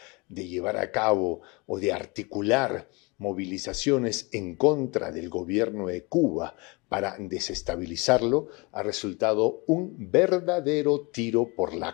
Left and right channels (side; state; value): right; quieter; 27.8 dB